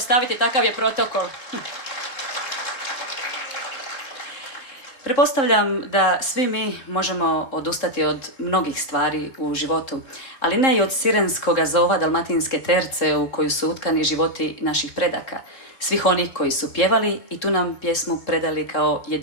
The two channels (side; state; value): right; late; 3.7 ms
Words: takav je protokol. Pretpostavljam da svi mi možemo odustati od mnogih stvari u životu, ali ne i od sirenskog zova dalmatinske terce u koju su utkani životi naših predaka, svih onih koji su pjevali i tu nam pjesmu predali kao